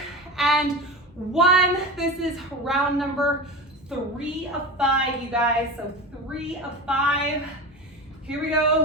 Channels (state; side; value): normal; both; correlation 0.27